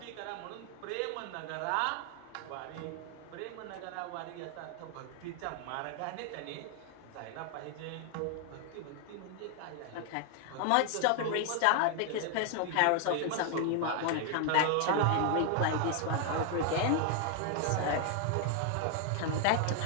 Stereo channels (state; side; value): different; both; correlation 0.00